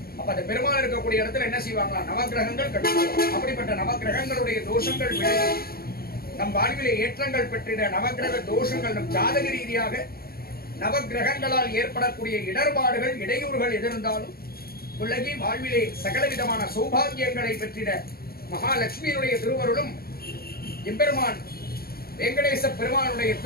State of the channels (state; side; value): late; right; 0.44 ms